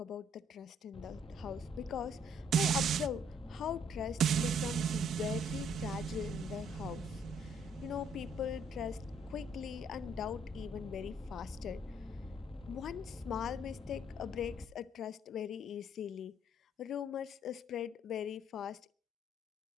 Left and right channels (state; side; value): normal; both; correlation 0.65